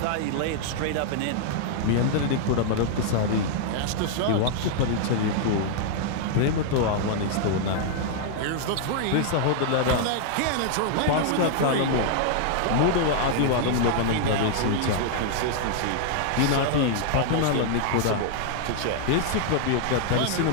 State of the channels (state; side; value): different; both; correlation -0.01